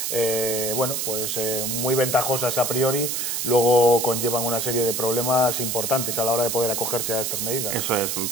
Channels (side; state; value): right; noise; hiss, 1 dB below the sound